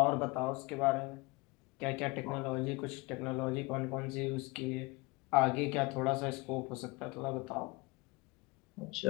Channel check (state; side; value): quieter; right; 25.6 dB